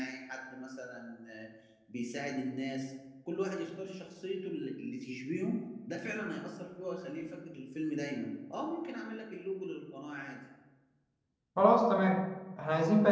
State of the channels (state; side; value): identical; both; correlation 1.00